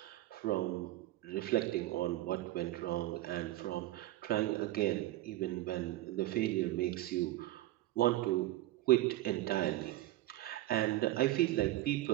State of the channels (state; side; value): quieter; left; 16.1 dB